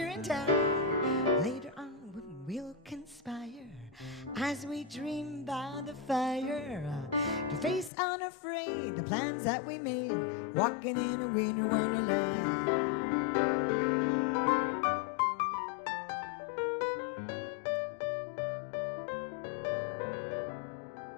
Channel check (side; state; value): right; drops out; at 7.9 s